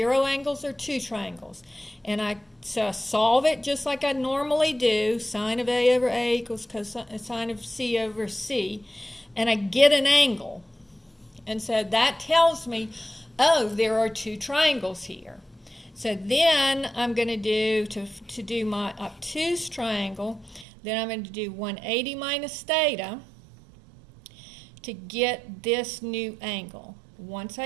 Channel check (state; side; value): drops out; left; at 20.7 s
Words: angles or 2 triangles. And I solve it just like I normally do, sine of a over a equals cosine of c over c, and I get an angle. And so that tells me, oh, there are 2 triangles here. So then I'm going to do, to do my obtuse triangle, then I'm going to do 180 minus theta to get this new angle. Once